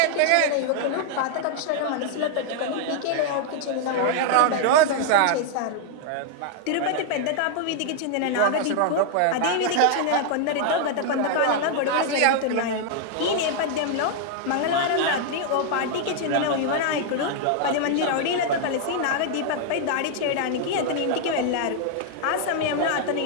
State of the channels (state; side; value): different; both; correlation 0.00